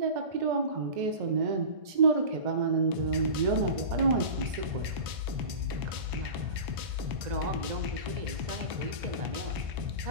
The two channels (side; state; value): left; late; 1.5 ms